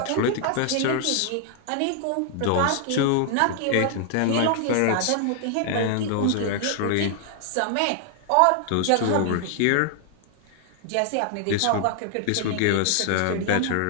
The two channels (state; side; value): different; both; correlation 0.00